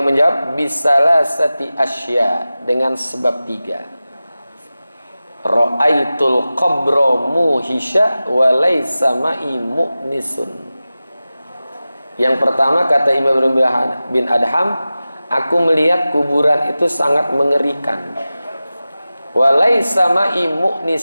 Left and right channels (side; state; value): both; inverted; correlation -0.95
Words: menjawab, bisalasati asya, dengan sebab 3. Ra'aitul qabra muhisha wa laysa ma'i mu'nisun. Yang pertama, kata Imam Ibrahim bin Adham, aku melihat kuburan itu sangat mengerikan. Walaysa ma'i